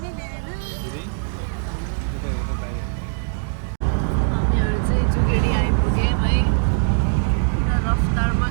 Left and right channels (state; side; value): silent; left; digital silence